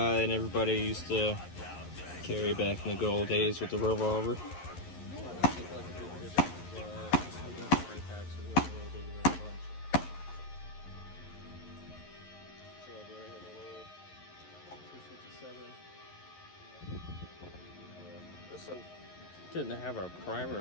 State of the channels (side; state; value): right; late; 11 ms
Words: and everybody used to carry back in the good old days with the revolver. This one didn't have our